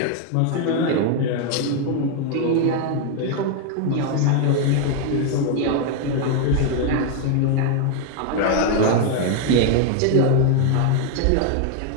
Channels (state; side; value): different; both; correlation 0.00